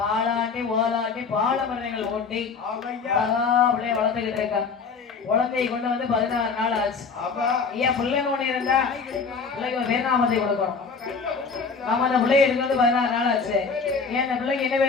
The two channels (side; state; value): right; quieter; 5.2 dB